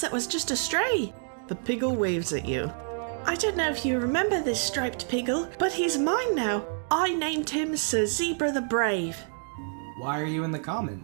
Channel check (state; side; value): silent; left; 59 dB below the other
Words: that was just a stray. The piggle waves at you. I don't know if you remember this striped piggle, but he's mine now. I named him Sir Zebra the Brave. Why are you in the